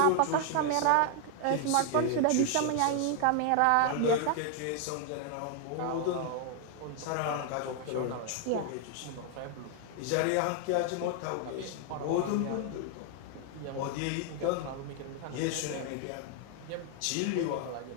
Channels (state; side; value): different; both; correlation 0.00